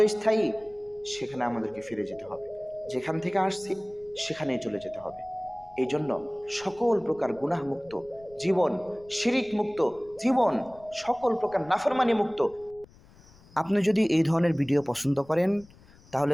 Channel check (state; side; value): noise; left; rumble, 25 dB below the sound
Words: সেখানে আমাদেরকে ফিরে যেতে হবে। যেখান থেকে আসছি সেখানেই চলে যেতে হবে। এই জন্য সকল প্রকার গুনাহ মুক্ত জীবন, শিরিক মুক্ত জীবন, সকল প্রকার নাফরমানি মুক্ত। আপনি যদি এই ধরনের ভিডিও পছন্দ করেন তাহলে